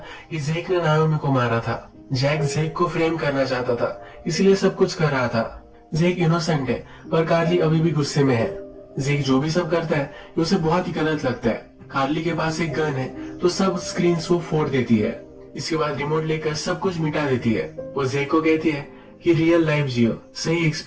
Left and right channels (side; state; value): both; identical; correlation 1.00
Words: कि जेक ने नाओमी को मारा था। जैक जेक को फ्रेम करना चाहता था इसलिए सब कुछ कर रहा था। जेक इनोसेंट है पर कार्ली अभी भी गुस्से में है। जेक जो भी सब करता है ये उसे बहुत ही गलत लगता है। कार्ली के पास एक गन है तो सब स्क्रीन को फोड़ देती है। इसके बाद रिमोट लेकर सब कुछ मिटा देती है। वो जेक को कहती है कि रियल लाइफ जियो, सही